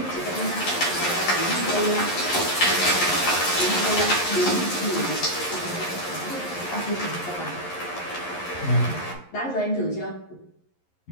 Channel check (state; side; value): late; right; 11 ms